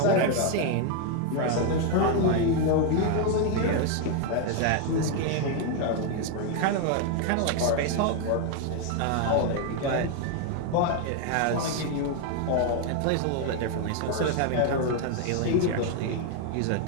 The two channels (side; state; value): both; different; correlation 0.01